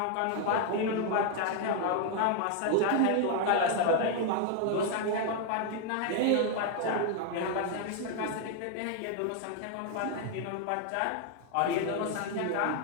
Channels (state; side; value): different; both; correlation 0.00